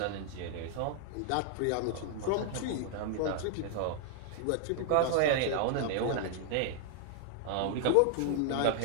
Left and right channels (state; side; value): different; both; correlation 0.00